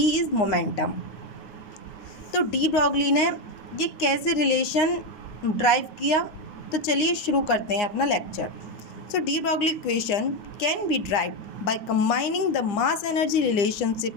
is momentum. तो डी ब्रॉगली ने ये कैसे रिलेशन ड्राइव किया, तो चलिए शुरू करते हैं अपना lecture. So de Broglie equation can be derived by combining the mass energy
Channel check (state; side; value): late; right; 9.4 ms